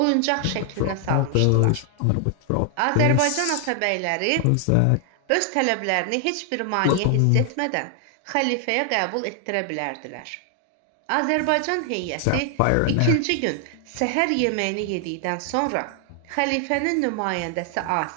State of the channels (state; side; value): different; both; correlation 0.00